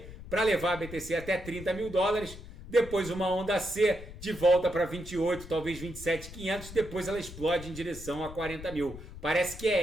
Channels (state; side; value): noise; left; rumble, 14 dB below the sound